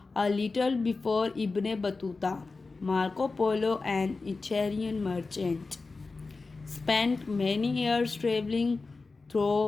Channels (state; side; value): quieter; right; 3.9 dB